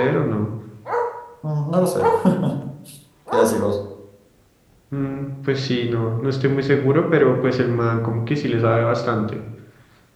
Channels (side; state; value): both; identical; correlation 1.00